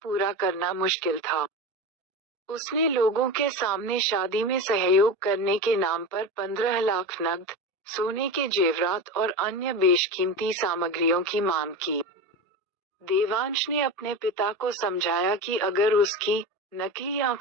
करना मुश्किल था। उसने लोगों के सामने शादी में सहयोग करने के नाम पर 15 लाख नकद, सोने के जेवरात और अन्य बेशकीमती सामग्रियों की मांग की। देवांश ने अपने पिता को समझाया कि अगर उसकी नकली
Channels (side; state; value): both; normal; correlation 0.24